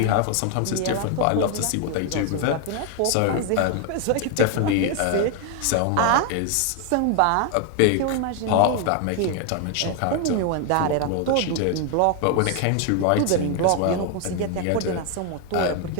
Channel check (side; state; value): both; different; correlation 0.01